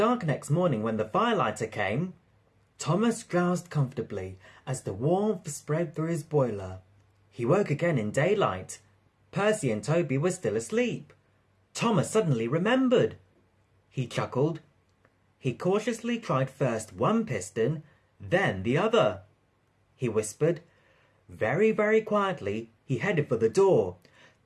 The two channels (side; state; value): both; identical; correlation 1.00